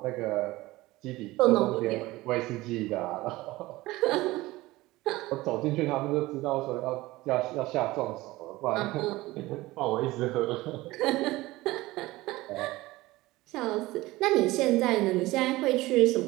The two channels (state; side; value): quieter; left; 19.1 dB